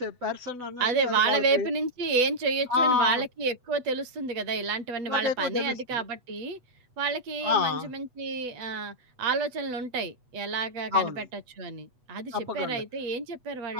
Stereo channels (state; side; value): late; left; 8.1 ms